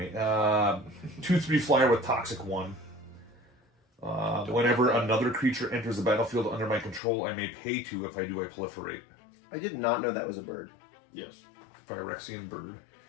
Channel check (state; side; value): drops out; right; at 7.0 s